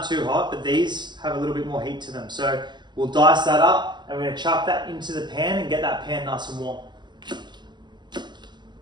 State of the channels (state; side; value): late; left; 0.21 ms